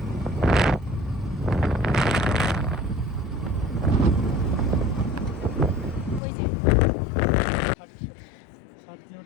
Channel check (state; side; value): drops out; right; at 6.2 s